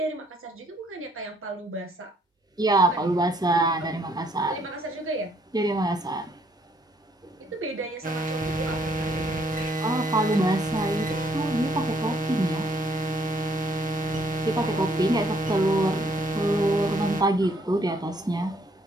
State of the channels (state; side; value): normal; both; correlation 0.67